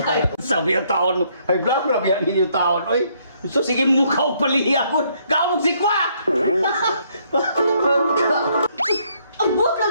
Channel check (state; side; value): inverted; both; correlation -0.69